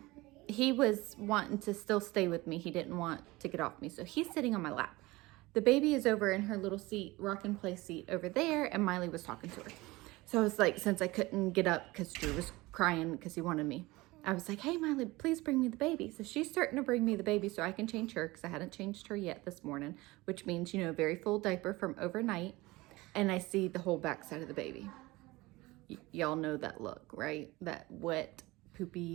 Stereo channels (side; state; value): left; quieter; 20.9 dB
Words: he was wanting to still stay with me. He didn't want to get off me. So he's sitting on my lap. The baby is over in her little seat, rock and play seat over there. And Miley was talking to her. So I was like, since I couldn't get up because Drew was crying because he wanted me, I was like, hey, Miley, please bring me the baby. So she's starting to bring me the baby so I can change her because I hadn't changed her yet this morning, which means, very full diaper from overnight. And I see the whole backside of the baby. Y'all know that look, right? That wet,